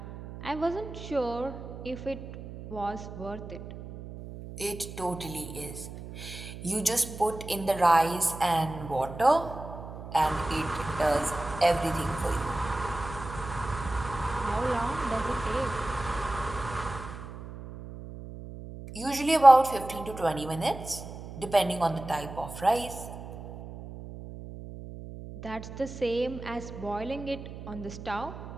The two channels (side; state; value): right; noise; hum, 12 dB below the sound